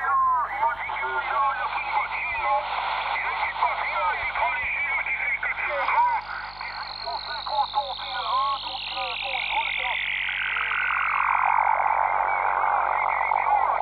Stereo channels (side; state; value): left; noise; hum, 21 dB below the sound